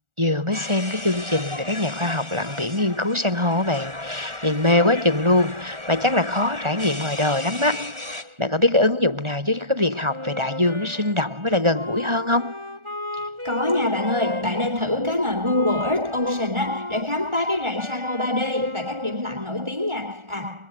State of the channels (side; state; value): left; late; 1.4 ms